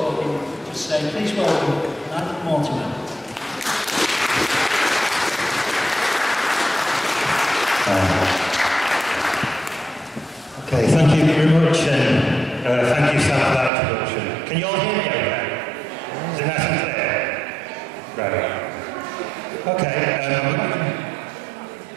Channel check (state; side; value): drops out; left; at 13.7 s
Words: just say, please welcome Nigel Mortimer. Okay, thank you very much, and thank you, Sam, for that introduction. Can you all hear me okay? Is it nice and clear? Right. Okay, a